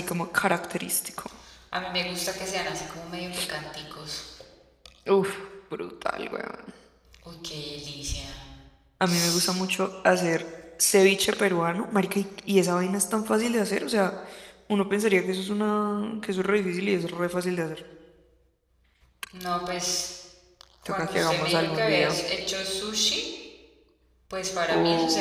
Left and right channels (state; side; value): identical; both; correlation 1.00